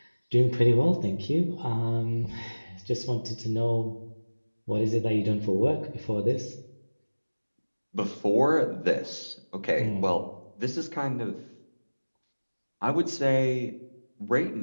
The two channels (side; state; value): both; inverted; correlation -1.00